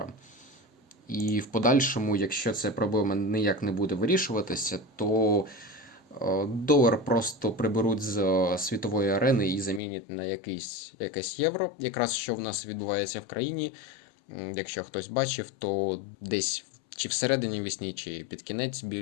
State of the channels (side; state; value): right; drops out; at 9.8 s